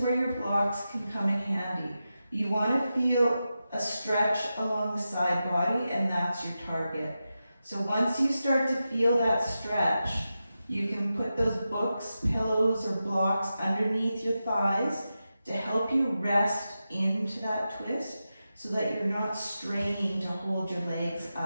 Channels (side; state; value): both; inverted; correlation -0.91